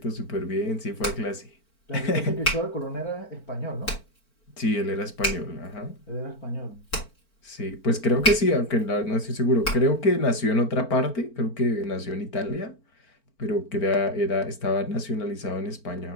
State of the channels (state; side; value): late; right; 4.5 ms